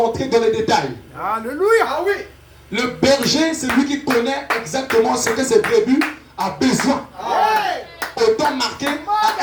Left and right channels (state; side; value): identical; both; correlation 1.00